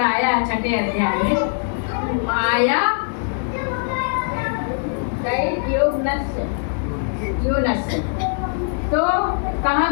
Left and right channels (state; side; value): silent; right; digital silence